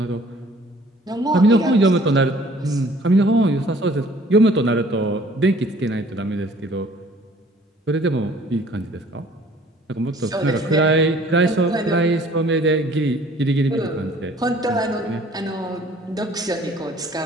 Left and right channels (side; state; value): both; normal; correlation 0.55